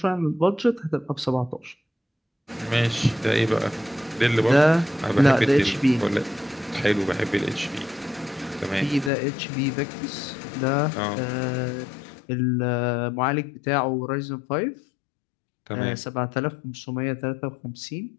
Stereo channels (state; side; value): drops out; right; at 9.1 s